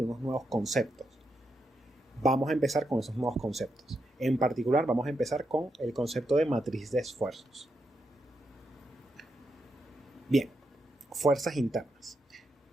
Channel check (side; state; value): both; normal; correlation 0.83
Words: unos nuevos conceptos. Vamos a empezar con esos nuevos conceptos. En particular vamos a empezar con el concepto de matriz de esfuerzos. Bien, fuerzas internas.